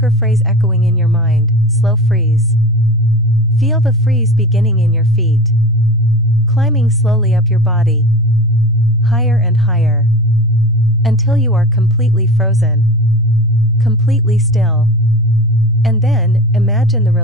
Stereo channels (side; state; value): both; normal; correlation 0.33